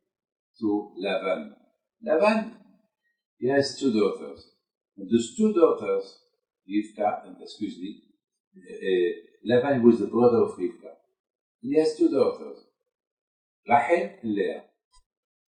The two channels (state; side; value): identical; both; correlation 1.00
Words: to Lavan. Lavan, he has two daughters. And those two daughters, Rivka, and Lavan was the brother of Rivka. He has two daughters, Rachel and Leah.